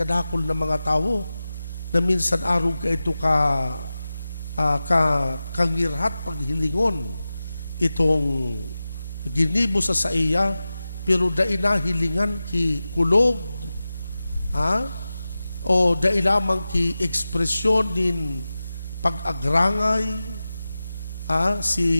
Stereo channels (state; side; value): inverted; both; correlation -0.95